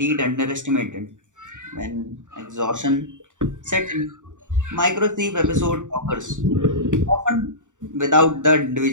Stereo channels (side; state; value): left; late; 0.86 ms